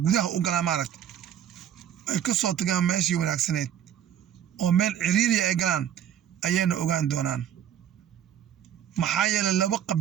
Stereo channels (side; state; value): left; quieter; 9.9 dB